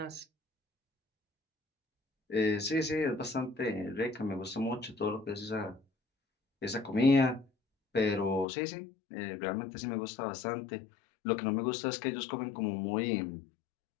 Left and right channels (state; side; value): drops out; right; at 8.5 s